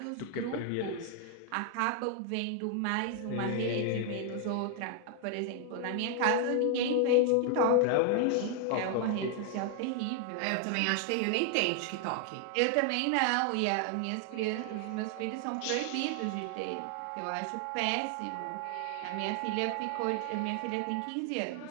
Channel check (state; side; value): different; both; correlation 0.00